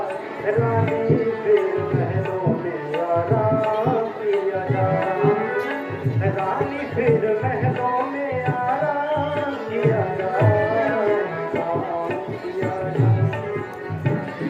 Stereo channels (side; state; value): both; identical; correlation 1.00